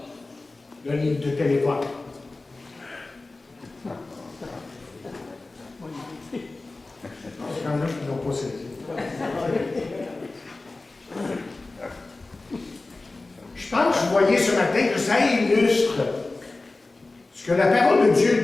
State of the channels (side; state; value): right; quieter; 3.3 dB